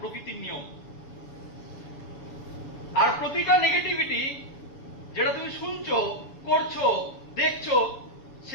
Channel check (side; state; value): right; late; 7.0 ms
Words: প্রকৃতির নিয়ম। আর প্রতিটা নেগেটিভিটি যেটা তুমি শুনছো, করছো, দেখছো,